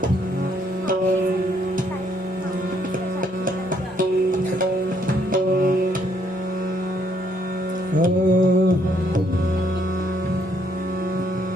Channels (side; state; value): both; normal; correlation 0.70